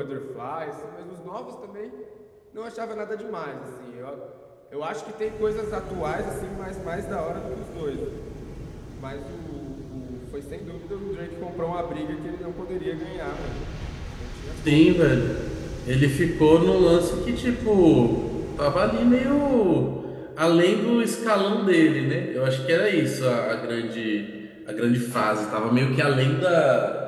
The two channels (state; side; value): identical; both; correlation 1.00